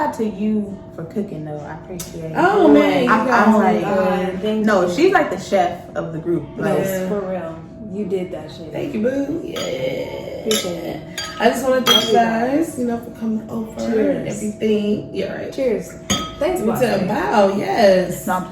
out to you for cooking though. I appreciate it. Oh man, I'm like, thank no, you. she's like the chef of the group. Like, Yeah. For real. You did that shit. thank you, boo. Yeah. Appreciate it. I just want to thank you guys, for coming over Cheers. and everything. Yeah, right. Cheers. Thanks, boss. Wow, yes. it's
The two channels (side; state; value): both; identical; correlation 1.00